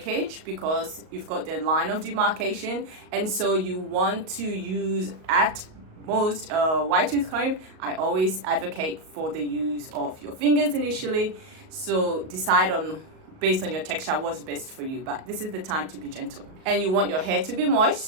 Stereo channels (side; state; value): left; late; 38 ms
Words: because you've got the line of demarcation, and so you want to use at most wide tooth comb. I always advocate for the use of your fingers initially, so decide on based on your texture what's best for you, but this is the time to be gentle. And you want your hair to be